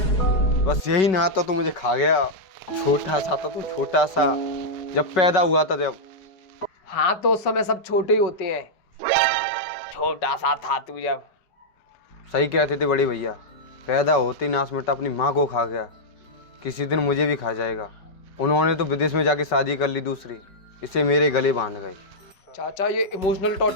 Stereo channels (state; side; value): late; right; 5.3 ms